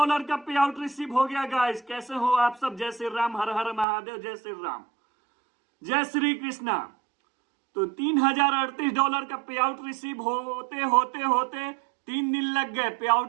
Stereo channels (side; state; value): left; drops out; at 3.9 s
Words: का पे out receive हो गया गाइस। कैसे हो आप सब? जय श्री राम, हर हर महादेव, जय श्री राम, जय श्री कृष्णा। तो $3038 का पे आउट रिसीव होते होते होते 3 दिन लग गए। पे